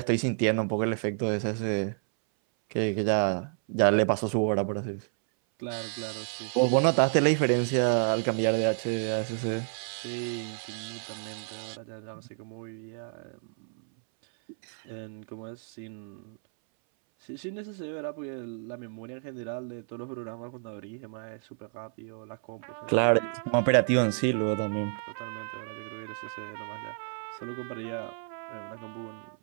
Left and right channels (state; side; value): silent; left; 58 dB below the other